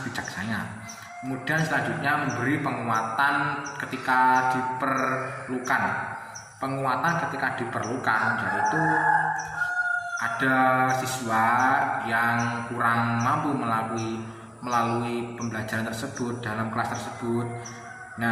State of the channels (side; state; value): both; identical; correlation 1.00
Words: bijaksana. Kemudian selanjutnya memberi penguatan ketika diperlukan. Penguatan ketika diperlukan yaitu ada siswa yang kurang mampu melalui pembelajaran tersebut dalam kelas tersebut.